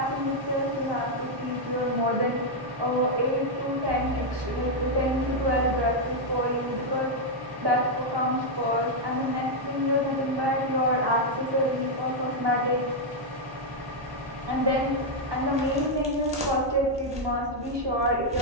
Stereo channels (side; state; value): left; late; 1.1 ms